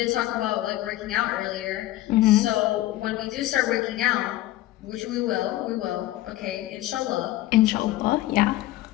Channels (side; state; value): right; quieter; 15.8 dB